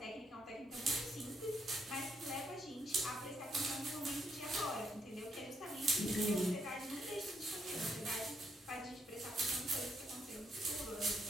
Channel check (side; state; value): both; normal; correlation 0.76